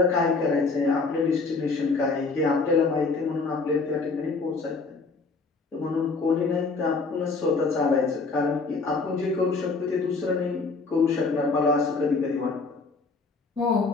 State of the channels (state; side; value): quieter; right; 4.1 dB